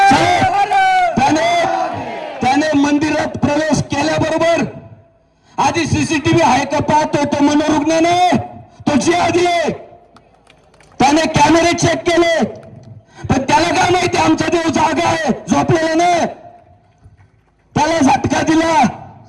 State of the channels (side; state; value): both; identical; correlation 1.00